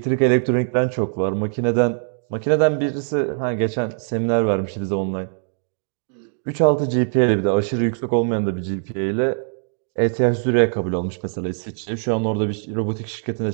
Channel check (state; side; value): silent; left; digital silence